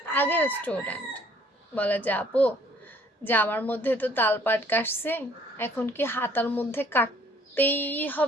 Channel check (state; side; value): normal; both; correlation 0.60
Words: আগের স্টুডেন্ট বলে যে আপু, যে আমার মধ্যে তো তালপাট কাটছে, এখন কি হাতার মধ্যে কাটতেই